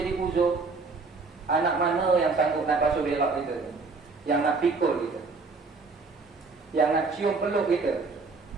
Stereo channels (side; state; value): left; quieter; 4.1 dB